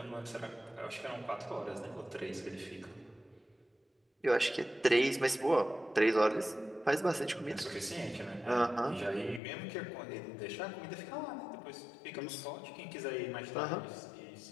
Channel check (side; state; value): right; drops out; at 9.4 s